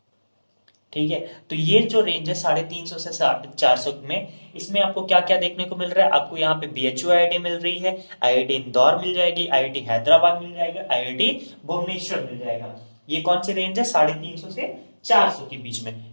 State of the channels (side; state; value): both; inverted; correlation -1.00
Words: ठीक है, तो ये जो रेंज है 350 से 400 में, इसमें आपको क्या क्या देखने को मिल रहा है, आपको यहाँ पे बीएचयू आईआईटी मिल रही है, आईआईटी इंदौर मिल जाएगी, आईआईटी हैदराबाद मिल जाएगा, आईआईटी भुवनेश्वर मिल जाएगा। ये कौन सी रेंज है, 350 से 400 के बीच में।